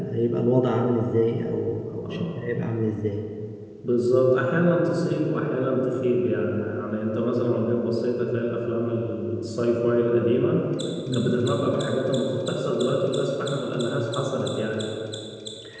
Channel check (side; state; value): both; identical; correlation 1.00